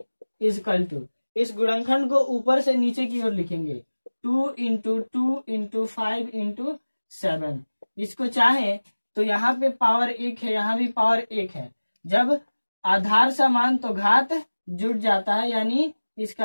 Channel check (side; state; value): both; inverted; correlation -1.00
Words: इजकल टू, इस गुणनखंड को ऊपर से नीचे की ओर लिखेंगे, 2 इंटू 2 इंटू 5 इंटू 7। इसको चाहे तो यहाँ पे पावर 1 है, यहाँ भी पावर 1 है। जब आधार समान तो घात जुड़ जाता है, यानी